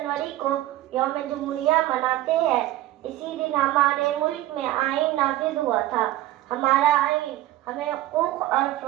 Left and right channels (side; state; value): left; quieter; 15.0 dB